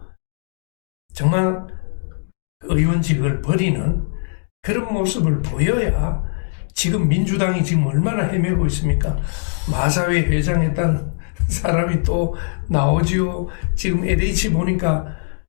정말 의원직을 버리는 그런 모습을 보여야 지금 민주당이 지금 얼마나 헤매고 있습니까? 마사회 회장했던 사람이 또 나오지요. 지금 LH 보니까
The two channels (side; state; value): right; silent; digital silence